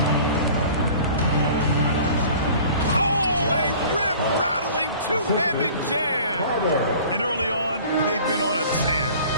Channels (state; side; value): inverted; both; correlation -0.46